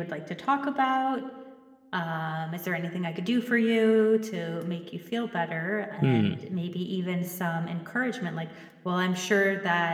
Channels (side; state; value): both; identical; correlation 1.00